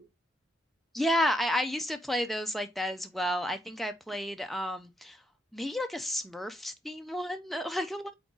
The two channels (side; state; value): both; normal; correlation 0.79